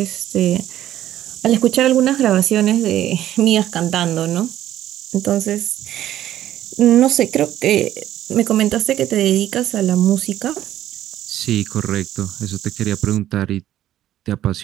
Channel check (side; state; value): left; quieter; 12.6 dB